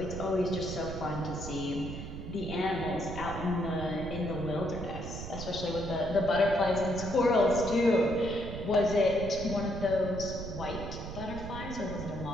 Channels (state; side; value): noise; right; rumble, 8 dB below the sound